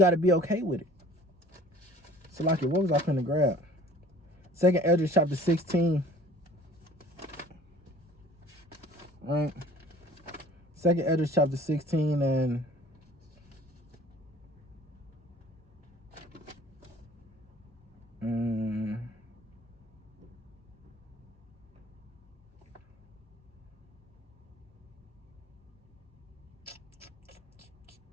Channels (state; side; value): normal; both; correlation 0.49